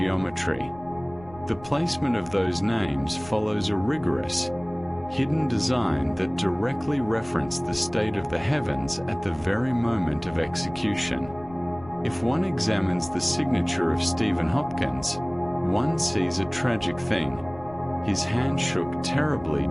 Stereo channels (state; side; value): noise; left; rumble, 20 dB below the sound